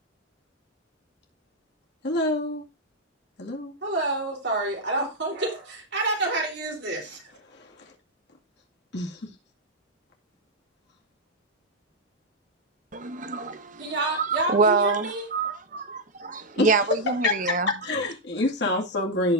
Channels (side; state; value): both; normal; correlation -0.02